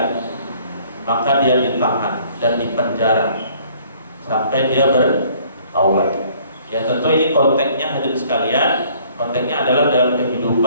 maka dia ditahan dan dipenjara sampai dia bertaubat. Ya, tentu ini konteksnya hadirin sekalian, konteksnya adalah dalam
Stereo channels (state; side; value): inverted; both; correlation -0.59